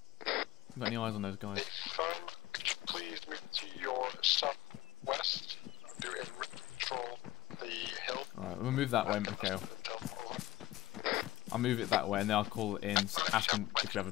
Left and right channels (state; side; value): quieter; right; 16.5 dB